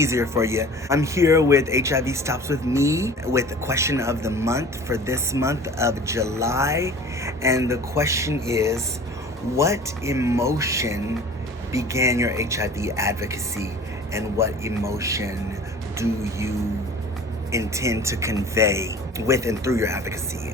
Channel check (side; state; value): both; normal; correlation 0.43